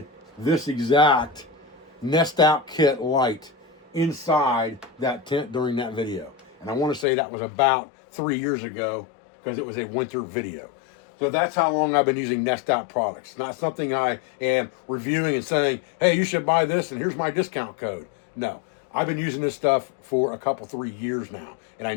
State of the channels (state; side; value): drops out; right; at 7.1 s